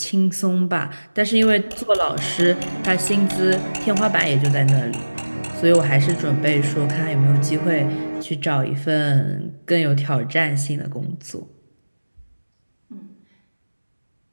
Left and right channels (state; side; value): inverted; both; correlation -1.00